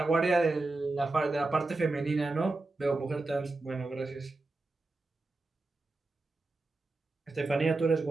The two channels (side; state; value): left; quieter; 3.2 dB